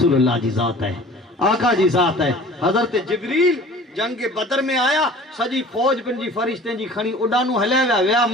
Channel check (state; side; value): normal; both; correlation 0.45